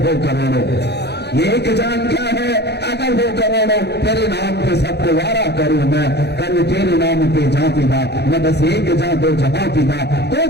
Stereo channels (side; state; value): right; late; 0.48 ms